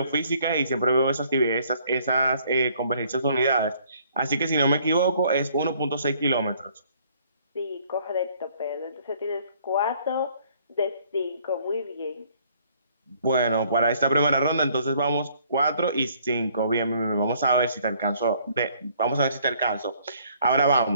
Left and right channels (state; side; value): inverted; both; correlation -0.62